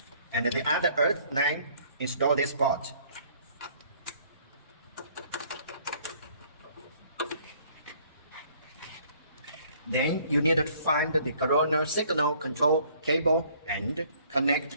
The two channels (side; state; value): both; inverted; correlation -0.59